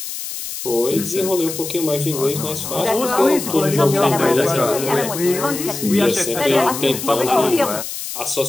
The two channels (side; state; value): left; noise; hiss, 7 dB below the sound